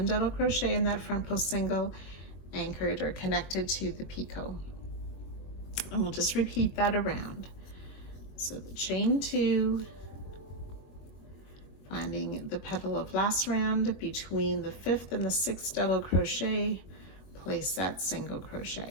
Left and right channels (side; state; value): right; late; 21 ms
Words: double crochet in that front post single, anchored or connected to the picot. And we'll just repeat that around. So the chain 2, finding the petal of last round between the 5th and the 6th double crochet, place that single